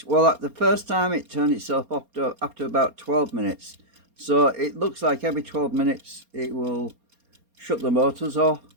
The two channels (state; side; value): late; left; 4.3 ms